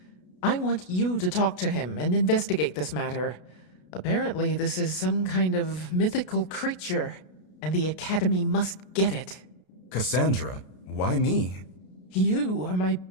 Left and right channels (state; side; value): late; right; 33 ms